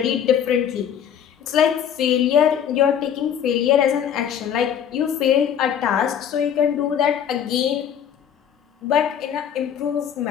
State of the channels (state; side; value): quieter; right; 8.8 dB